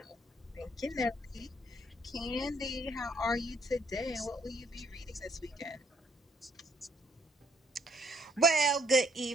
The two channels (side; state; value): both; normal; correlation 0.67